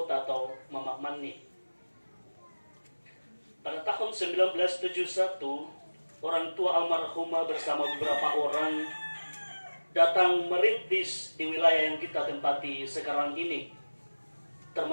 atau Mama Mani. Pada tahun 1971, orang tua almarhumah bersama beberapa orang datang merintis di wilayah yang kita tempati sekarang ini,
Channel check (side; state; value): both; inverted; correlation -1.00